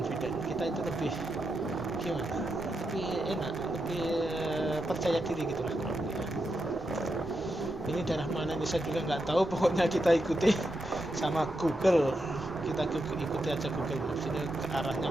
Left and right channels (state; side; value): normal; both; correlation 0.85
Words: kita itu lebih gimana, lebih enak, lebih percaya diri gitulah kurang lebih. Ini daerah mana ini saya juga nggak tahu, pokoknya kita ikuti sama Google, kita ikuti aja Google Maps, ini ke arahnya